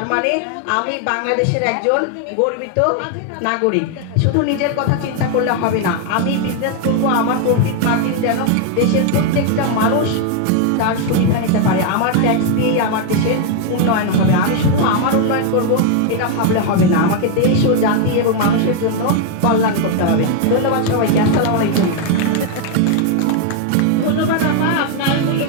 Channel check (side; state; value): both; different; correlation 0.01